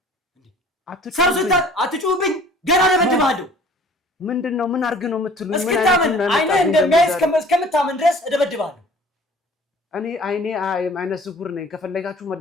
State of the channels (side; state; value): both; normal; correlation 0.50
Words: አትጩህብኝ፣ ገና እደበድብሃለሁ። ምንድን ነው? ምን አድርግ ነው የምትሉኝ? እስክታምን አይነ እንደሚያይ እስከምታምን ድረስ እደበድብሃለሁ። እኔ አይኔ አይነ ስውር ነኝ። ከፈለጋችሁ